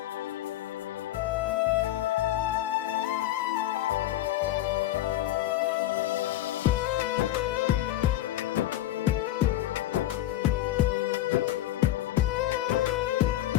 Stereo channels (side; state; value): right; quieter; 14.0 dB